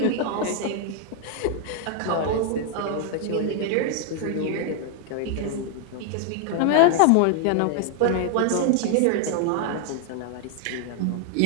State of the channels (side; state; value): both; different; correlation 0.00